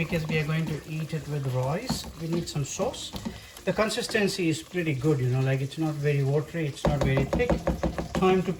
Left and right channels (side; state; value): both; identical; correlation 1.00